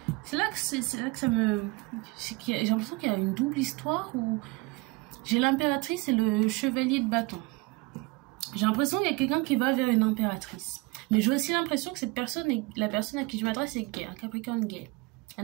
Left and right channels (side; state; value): left; quieter; 24.7 dB